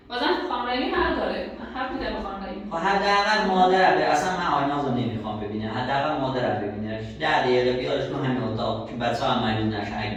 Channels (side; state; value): both; identical; correlation 1.00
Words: بازم خانم رحیمی حق داره. من حق میدم به خانم رحیمی. خب حداقل مادر به اصلا من آیناز رو نمیخوام ببینم حداقل مادر رو ببینش 10 دقیقه بیارش تو همین اتاق که بچه ها هم مریض نشه اگه